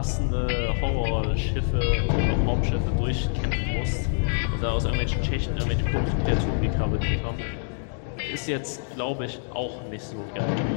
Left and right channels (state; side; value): silent; right; digital silence